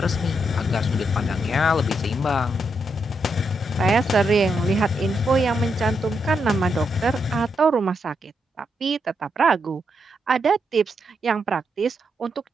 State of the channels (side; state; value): both; normal; correlation 0.81